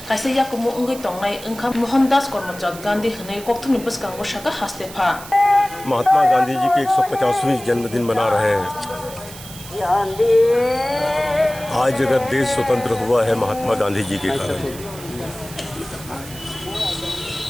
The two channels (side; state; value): right; noise; hiss, 15 dB below the sound